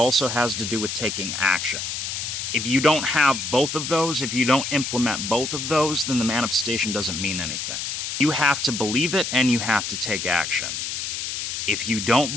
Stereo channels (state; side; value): noise; left; hiss, 4 dB below the sound